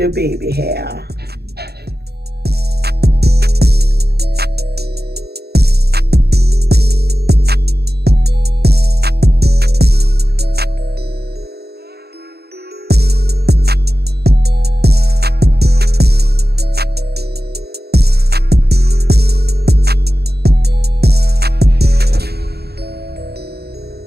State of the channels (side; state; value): left; late; 0.47 ms